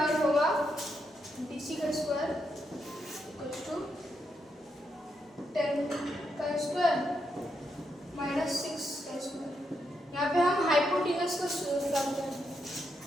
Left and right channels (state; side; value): normal; both; correlation 0.81